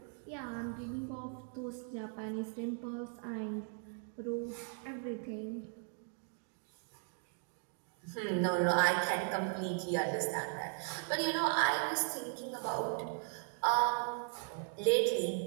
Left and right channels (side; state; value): left; silent; 53 dB below the other